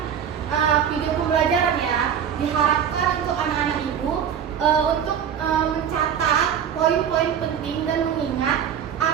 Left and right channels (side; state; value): left; quieter; 8.5 dB